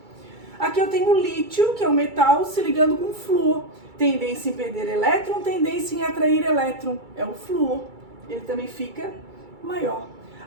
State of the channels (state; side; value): late; left; 2.3 ms